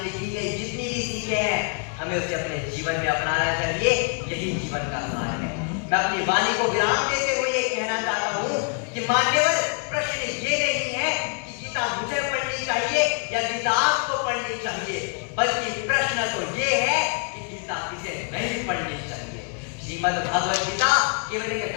लिखी गई जितनी भी सीखें हैं हमें उसे अपने जीवन में अपनाना चाहिए। यही जीवन का सार है। मैं अपनी वाणी को विराम देते हुए ये कहना चाहता हूँ कि मान्यवर प्रश्न ये नहीं है कि गीता मुझे पढ़नी चाहिए या गीता आपको पढ़नी चाहिए, बल्कि प्रश्न तो ये है कि गीता किसे नहीं पढ़नी चाहिए। श्रीमद् भागवत गीता केवल एक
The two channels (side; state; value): right; quieter; 39.4 dB